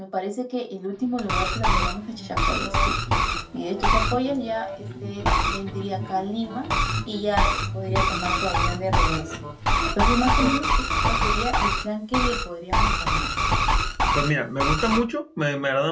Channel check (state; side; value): identical; both; correlation 1.00